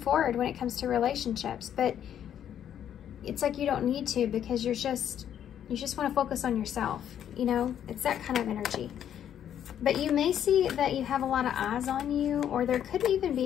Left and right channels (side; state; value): right; quieter; 9.8 dB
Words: forward when it comes to relationships. But it's like you don't need to, because you just want to focus on yourself. You know, it's that kind of energy. But you may see that you have a lot of eyes on you, or there could even